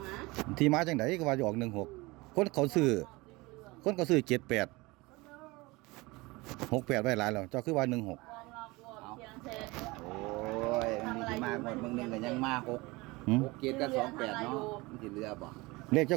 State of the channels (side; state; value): left; quieter; 23.0 dB